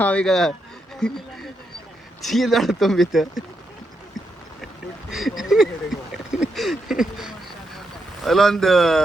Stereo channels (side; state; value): both; normal; correlation 0.82